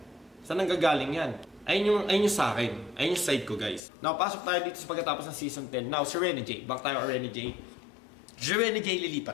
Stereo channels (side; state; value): right; drops out; at 3.8 s